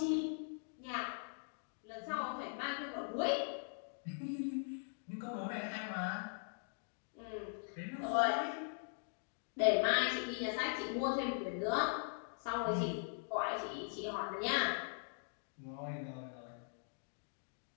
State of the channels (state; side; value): silent; right; digital silence